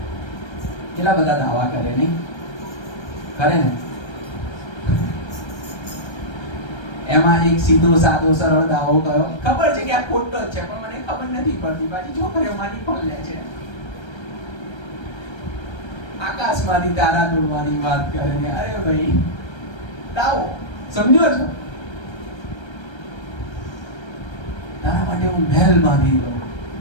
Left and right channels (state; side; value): late; right; 1.3 ms